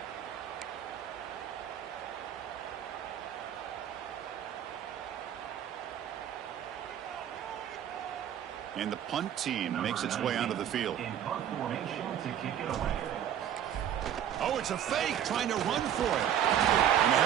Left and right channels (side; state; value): left; quieter; 10.1 dB